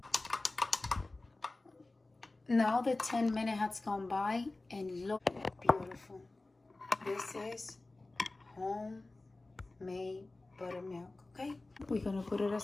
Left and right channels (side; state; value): right; quieter; 3.1 dB